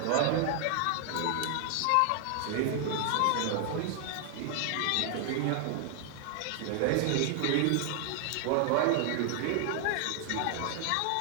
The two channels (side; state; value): both; different; correlation 0.00